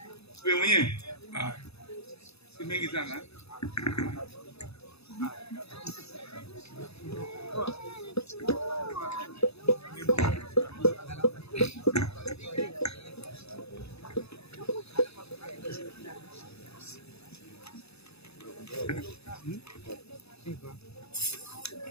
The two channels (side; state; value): right; late; 0.79 ms